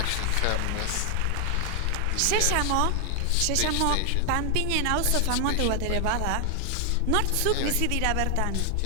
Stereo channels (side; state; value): both; different; correlation 0.00